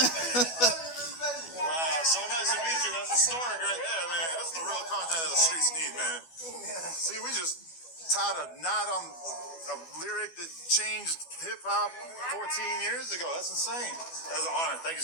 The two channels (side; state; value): right; late; 12 ms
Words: Wow, so nice to meet you. That's historic right there, man. That's the real content that the streets need, man. See, we just tied a knot on a lyric that changed hip-hop 14 years ago. That's insane. That was an honor. Thank